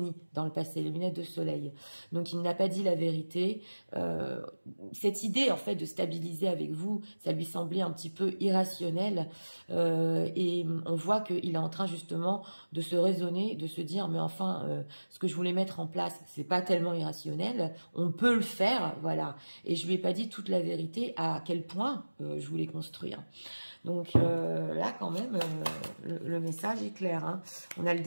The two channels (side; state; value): both; inverted; correlation -1.00